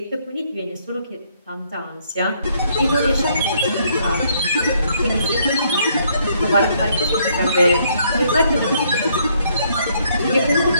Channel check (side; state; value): both; inverted; correlation -0.69